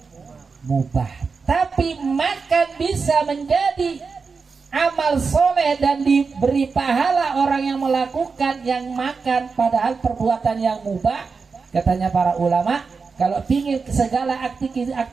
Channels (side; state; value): left; quieter; 4.9 dB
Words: mubah. Tapi makan bisa menjadi amal soleh dan diberi pahala orang yang melakukan yang makan, padahal perbuatan yang mubah. Katanya para ulama, kalau ingin segala